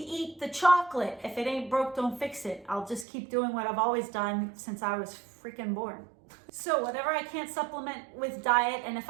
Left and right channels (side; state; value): left; drops out; at 3.1 s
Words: the chocolate. If it ain't broke, don't fix it. I'll just keep doing what I've always done since I was freaking born. So whatever I can't supplement with diet, and if